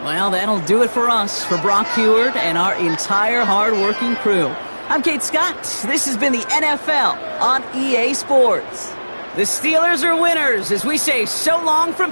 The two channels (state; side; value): inverted; both; correlation -1.00